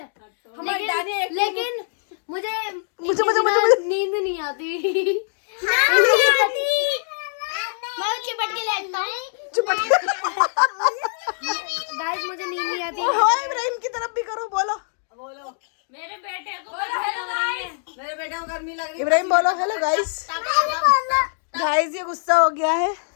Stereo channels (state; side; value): silent; right; digital silence